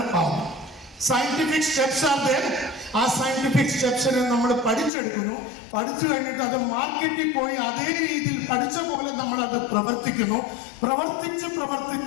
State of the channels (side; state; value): right; drops out; at 4.9 s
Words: ആവുന്നത്. Scientific steps are there. ആ സയന്റിഫിക് സ്റ്റെപ്സിനെ നമ്മൾ പഠിച്ചെടുക്കുന്നു. പഠിച്ചു കഴിഞ്ഞിട്ട് അത് മാർക്കറ്റിൽ പോയി അതേ രീതിയിൽ പഠിച്ച പോലെ നമ്മൾ അത് പ്രവർത്തിക്കുന്നു. പ്രവർത്തിച്ച്